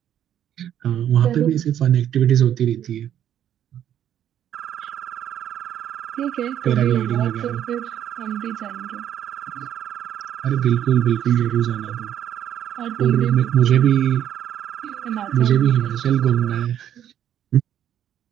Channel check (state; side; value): quieter; left; 10.5 dB